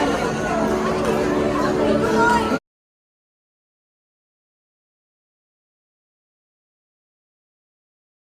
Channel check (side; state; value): both; identical; correlation 1.00